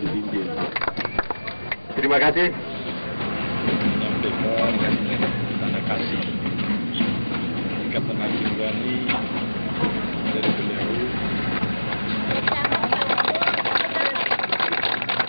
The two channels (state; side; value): inverted; both; correlation -1.00